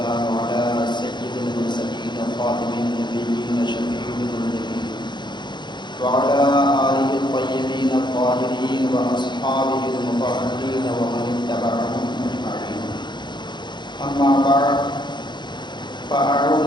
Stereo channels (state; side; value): late; right; 0.22 ms